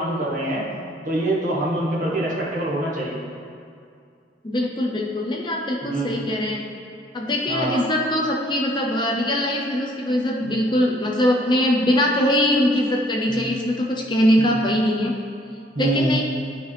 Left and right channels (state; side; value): normal; both; correlation 0.61